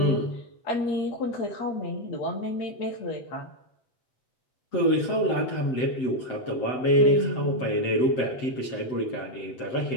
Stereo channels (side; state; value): right; late; 7.8 ms